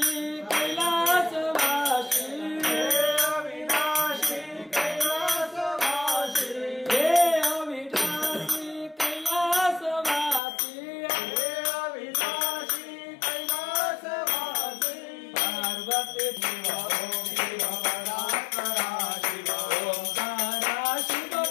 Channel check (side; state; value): right; drops out; at 10.4 s